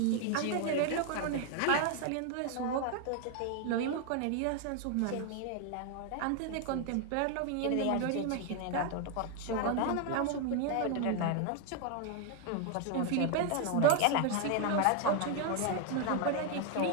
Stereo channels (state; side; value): different; both; correlation 0.01